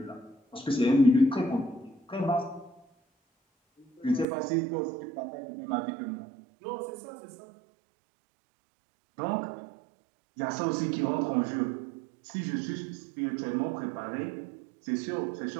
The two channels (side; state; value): left; drops out; at 4.2 s